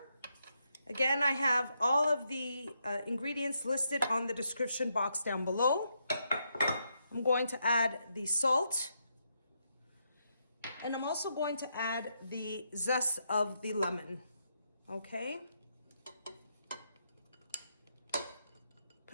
Again, I have all of the ingredients listed on the description box down below. I'm going to add the salt. And I'm also going to add the zest of the lemon. Okay?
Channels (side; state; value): both; inverted; correlation -0.80